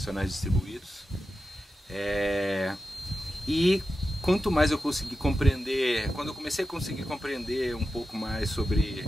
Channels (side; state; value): both; normal; correlation 0.91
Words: distribuídos. E quanto mais eu consegui compreender, quando eu comecei a conseguir compreender um pouco mais sobre